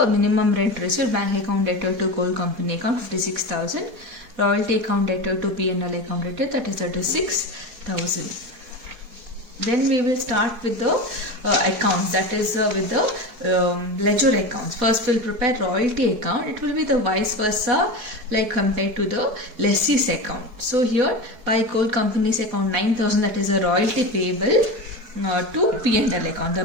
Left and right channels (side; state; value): left; late; 4.1 ms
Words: minimum rent received, bank account debtor to coal company account 56,000. Royalty account debtor to P&L account debtor, that is 36,000. Then we will start with the accounts, that is with the ledger accounts. First we'll prepare royalty account. It will be the vice versa like compared to the lessee's account. So here by coal company's account 9,000, that is a royalty payable to P&L account.